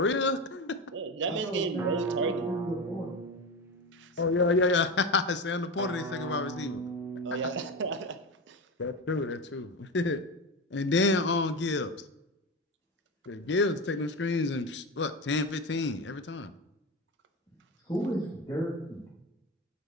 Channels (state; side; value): normal; both; correlation 0.21